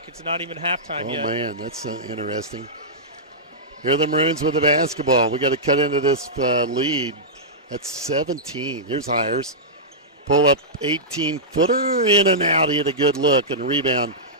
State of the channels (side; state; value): both; normal; correlation -0.13